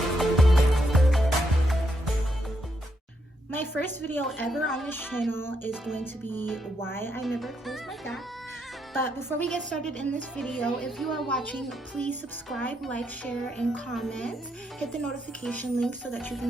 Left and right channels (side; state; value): both; normal; correlation 0.78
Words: My first video ever on this channel is going to be why I never close my gap. But before we get started in this video, if you are watching, please subscribe, like, share, and comment. Hit the notification link so that you